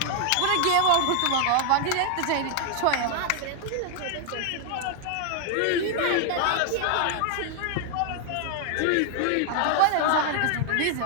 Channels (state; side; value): different; both; correlation 0.00